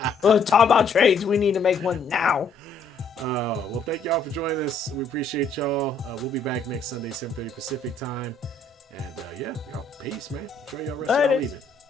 Well, talk about trades. We need to make one now. Well, thank y'all for joining us. We appreciate y'all. We'll be back next Sunday, 7:30 Pacific time. And y'all, peace, man. Enjoy y'all rest of y'all evening.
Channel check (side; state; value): right; quieter; 3.4 dB